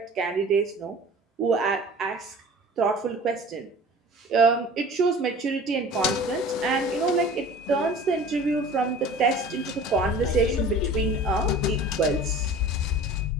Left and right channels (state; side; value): normal; both; correlation 0.43